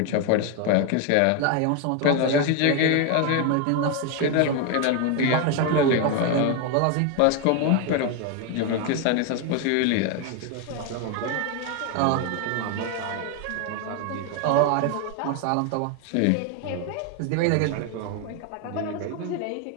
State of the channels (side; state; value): both; different; correlation 0.01